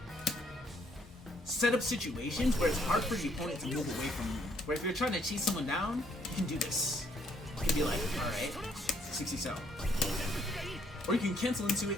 set up situations where it's hard for the opponent to move away from you. Where if you're trying to chase someone down, you can do this. You can be like, alright, 60 cell. Or you can cancel into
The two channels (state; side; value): normal; both; correlation 0.67